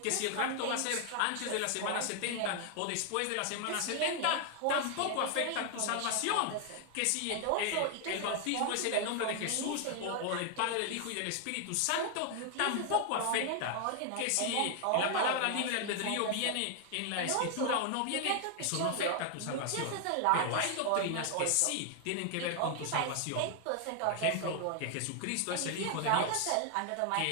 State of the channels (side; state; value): both; different; correlation 0.00